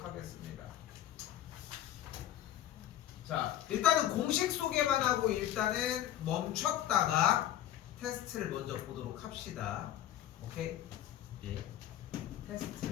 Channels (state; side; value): quieter; right; 11.9 dB